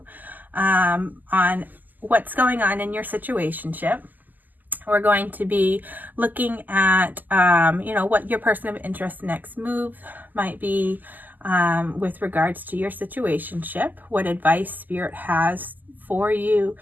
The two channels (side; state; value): left; late; 0.085 ms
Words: on what's going on in your situationship. We're going to be looking at, what your person of interest next move might be with regards to your situationship, what advice Spirit has for you,